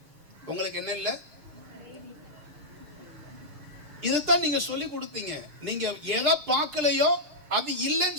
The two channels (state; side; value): late; left; 6.7 ms